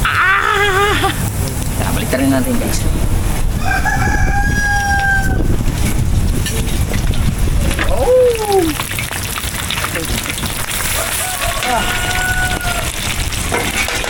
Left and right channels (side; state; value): both; identical; correlation 1.00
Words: Ah! Tara, balik rin natin guys. Oh!